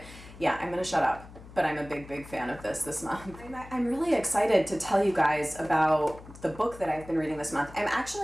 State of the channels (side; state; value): left; noise; hum, 18 dB below the sound